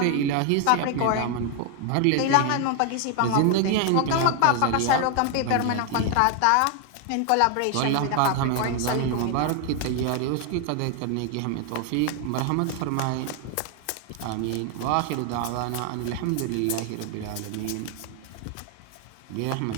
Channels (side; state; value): both; different; correlation 0.01